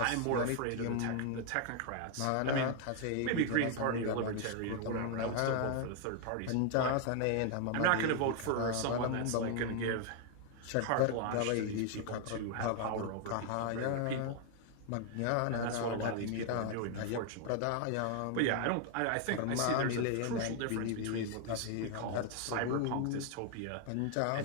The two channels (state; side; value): different; both; correlation 0.00